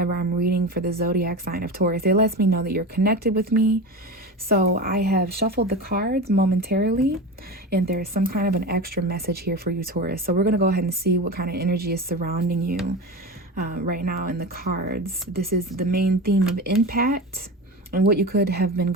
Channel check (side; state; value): both; normal; correlation 0.26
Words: I'm reading for the zodiac sign of Taurus. It lets me know that you're connected with me. So I have shuffled the cards momentarily, and there's some kind of an extra message here for you, Taurus. So we're going to go ahead and see what kind of energy is surrounding you right now in the cards. This is the main theme of impact and what you could have been